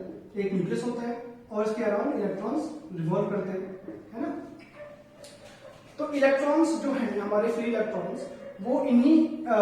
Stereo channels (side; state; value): both; identical; correlation 1.00